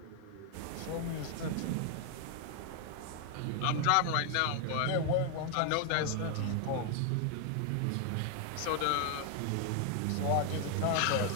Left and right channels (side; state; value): both; different; correlation 0.00